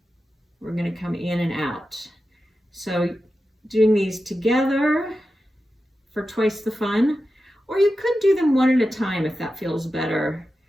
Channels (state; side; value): normal; both; correlation 0.91